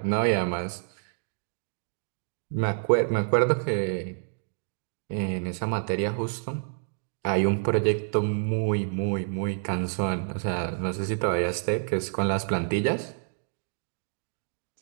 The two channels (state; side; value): silent; left; digital silence